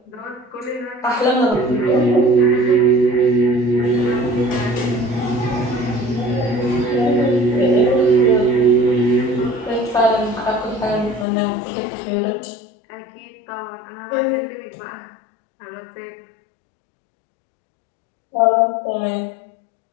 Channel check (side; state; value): right; drops out; at 11.2 s